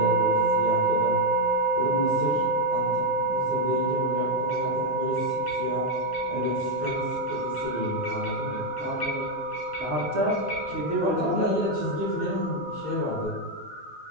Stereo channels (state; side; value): normal; both; correlation 0.02